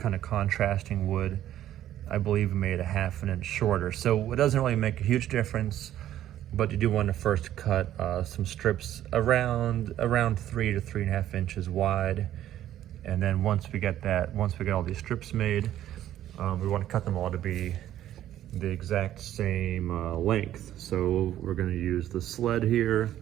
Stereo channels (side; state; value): left; quieter; 12.3 dB